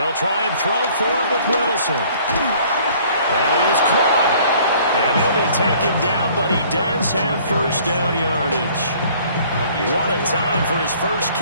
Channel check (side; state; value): both; inverted; correlation -0.56